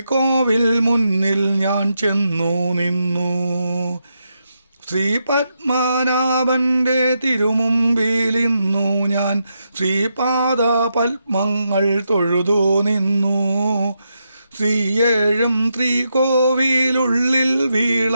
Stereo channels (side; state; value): both; inverted; correlation -0.84